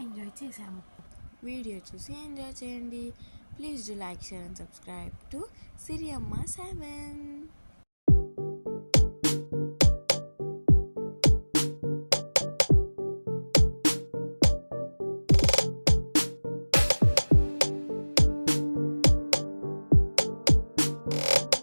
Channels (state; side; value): inverted; both; correlation -1.00